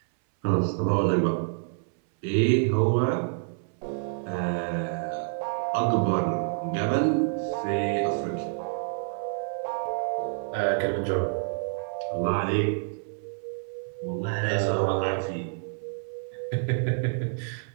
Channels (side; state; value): left; silent; 59 dB below the other